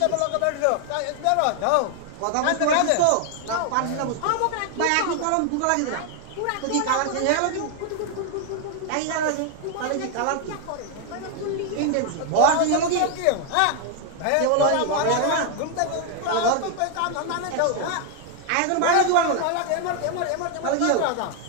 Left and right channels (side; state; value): both; different; correlation 0.00